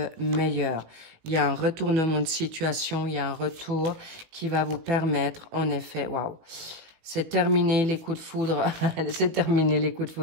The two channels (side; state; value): left; late; 19 ms